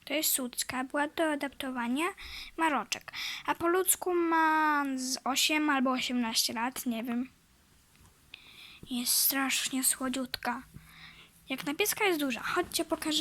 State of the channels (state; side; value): identical; both; correlation 1.00